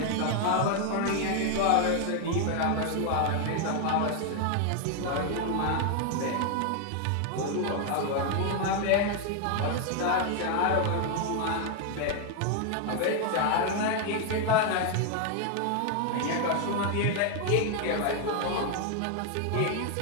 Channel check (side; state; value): both; different; correlation 0.00